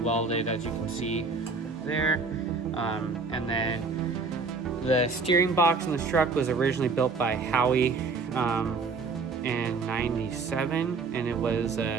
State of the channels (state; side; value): quieter; left; 4.3 dB